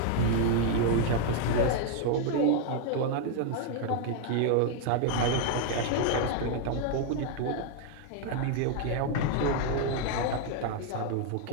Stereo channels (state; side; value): different; both; correlation 0.00